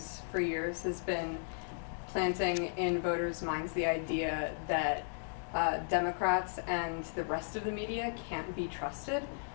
for years has been planting in voters' minds the idea that Democrats and the rest of the media can't be trusted.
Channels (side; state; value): right; silent; digital silence